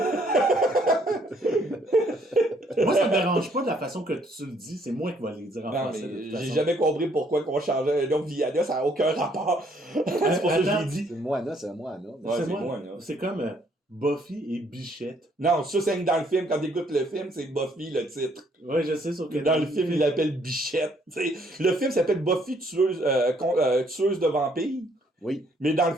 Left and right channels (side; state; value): both; normal; correlation 0.66